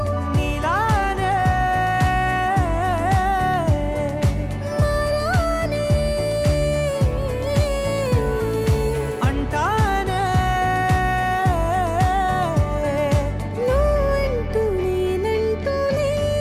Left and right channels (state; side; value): identical; both; correlation 1.00